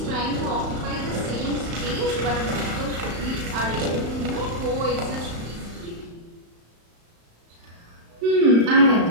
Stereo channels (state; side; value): late; left; 35 ms